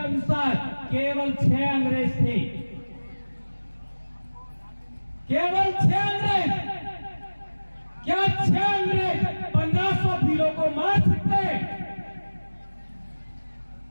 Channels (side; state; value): both; inverted; correlation -1.00